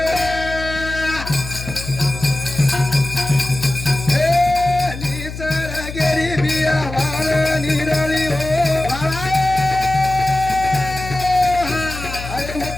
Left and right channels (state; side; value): noise; left; hum, 10 dB below the sound